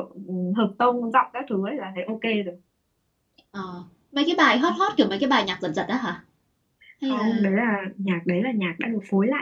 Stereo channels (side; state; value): both; identical; correlation 1.00